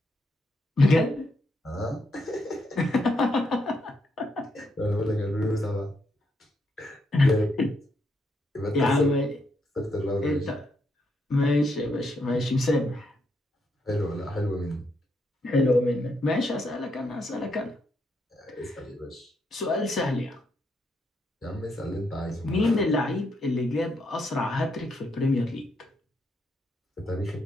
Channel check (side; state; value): both; normal; correlation 0.78